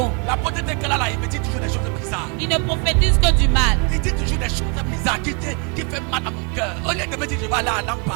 La potente qu'elle a là, il me dit toujours des choses bizarres. Il ne prophétise que du mal. Il dit toujours des choses bizarres qui fait mal à mon cœur. Au lieu de me dire je vais aller à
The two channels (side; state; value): left; quieter; 35.5 dB